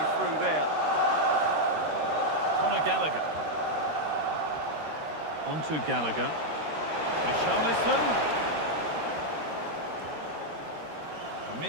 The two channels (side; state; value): left; late; 13 ms